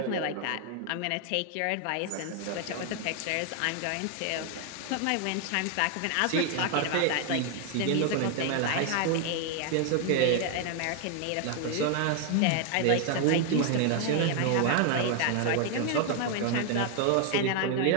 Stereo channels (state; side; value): different; both; correlation 0.00